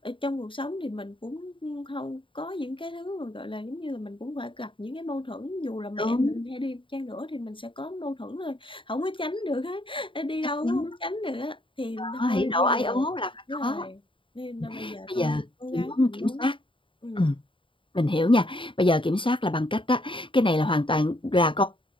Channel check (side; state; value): right; late; 0.25 ms